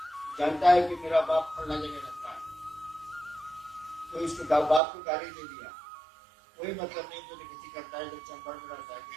जानता है कि मेरा बाप फलना जगह रहता है, तो इसको बाप को गाली दे दिया, कोई मतलब नहीं। तो किसी करता है, जब चंबल में रहता है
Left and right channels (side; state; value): left; drops out; at 4.8 s